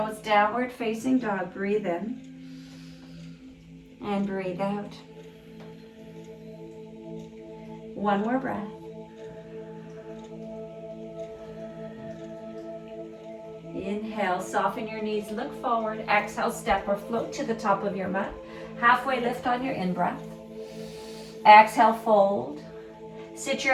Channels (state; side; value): identical; both; correlation 1.00